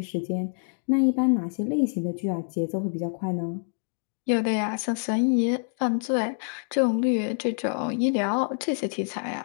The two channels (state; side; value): silent; right; 59 dB below the other